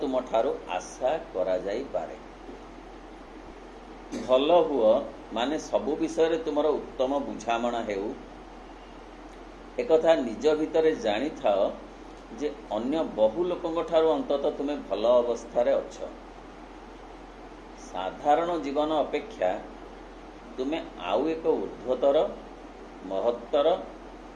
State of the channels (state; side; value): identical; both; correlation 1.00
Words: ठारू आशा करा जाई पारे। भल हुओ माने सबु विषय तुमर उत्तम बुझामणा हेउ, एकथा निज भितरे जानी थाओ जे अन्य बहु लोकंग ठारू अंततः तुमे भल अवस्था रे अछ। साधारण जीवन अपेक्षा तुमे आउ एक ऊर्ध्वतर महत्तर